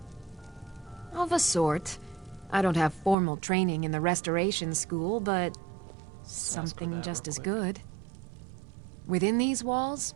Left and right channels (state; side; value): drops out; left; at 3.2 s